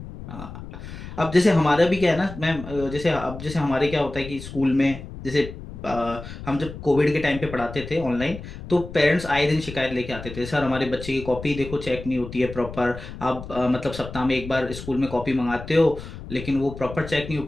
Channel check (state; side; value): noise; left; rumble, 12 dB below the sound